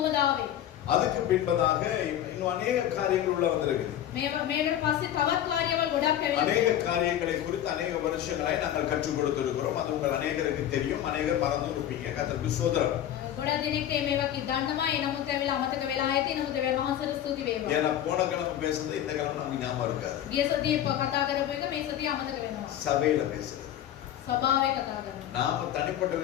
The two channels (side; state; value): right; quieter; 11.3 dB